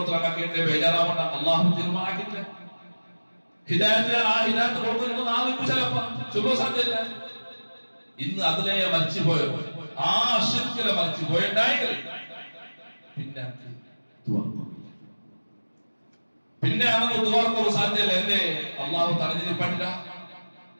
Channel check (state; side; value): inverted; both; correlation -1.00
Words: ബേജാറാവണ്ട. അള്ളാഹു തീരുമാനാക്കിയിട്ടില്ല. ഹിദായത്ത് കൊടുക്കുന്നത് നാളെ ചിലപ്പോ ചൊല്ലോ സാധ്യല്ല. ഇന്ന് അതിലെ മരിച്ചുപോയോ, ആ ശിർക്കിലെ മരിച്ചുപോയുണ്ടായെങ്കിൽ പിന്നെ അവന് ദുആർക്കോ സാധ്യല്ല. എന്തേ? അള്ളാഹു തടഞ്ഞിരിപ്പറ്റില്ല.